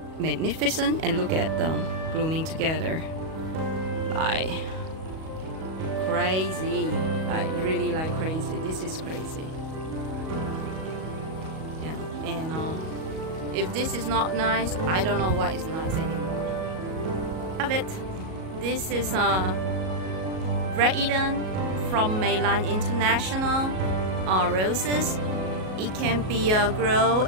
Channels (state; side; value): late; left; 37 ms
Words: magnificent? And look at them blooming together, like crazy, like really like crazy. This is crazy. Yeah. And if this is not nice, I don't know what is nice anymore. Have it. This is Red Eden from Meilland International roses. It can be